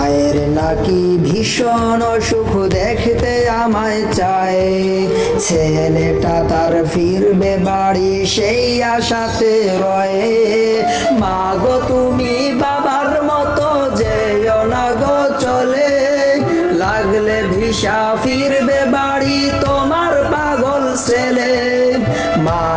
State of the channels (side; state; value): both; identical; correlation 1.00